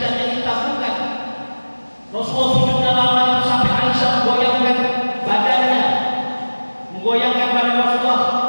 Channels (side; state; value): both; inverted; correlation -1.00